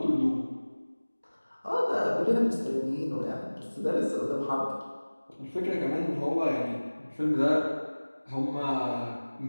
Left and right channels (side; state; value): both; inverted; correlation -1.00